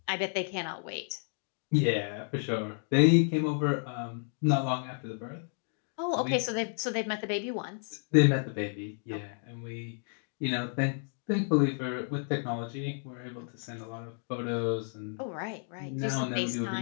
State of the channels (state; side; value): silent; right; 57 dB below the other